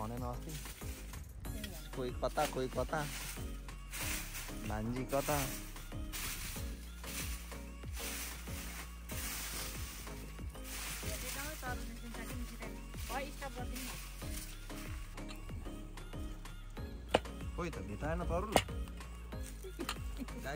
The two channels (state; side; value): identical; both; correlation 1.00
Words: अस्ति कोही कता भान्जी कता कोही त भेटाएन तरुल